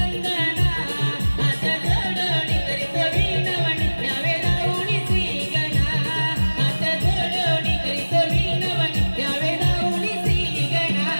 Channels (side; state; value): both; inverted; correlation -1.00